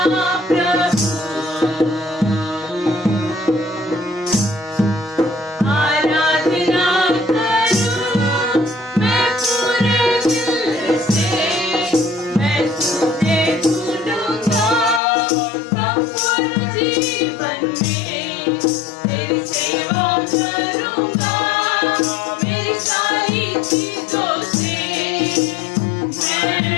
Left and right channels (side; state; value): right; drops out; at 15.0 s